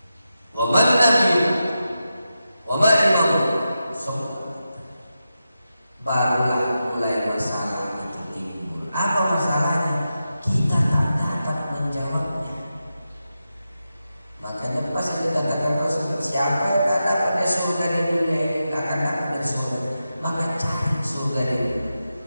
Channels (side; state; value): both; inverted; correlation -0.90